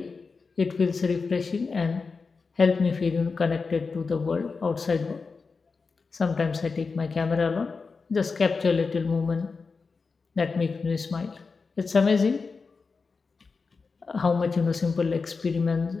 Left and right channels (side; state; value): right; quieter; 4.6 dB